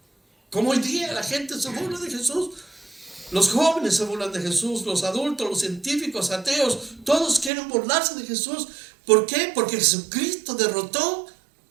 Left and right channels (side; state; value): left; drops out; at 7.5 s